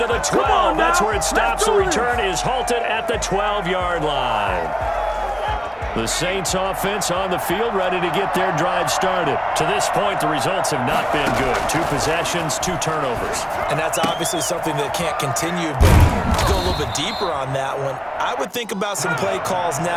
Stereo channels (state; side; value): identical; both; correlation 1.00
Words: to the 12. That's where it stops. The return is halted at the 12-yard line. The Saints offense on the field ready to get their drive started. To this point, the results have not been good. 2 possessions, 2 turnovers. And that's obviously something that can't continue, but to go a little bit deeper on that one, I would think about some play calls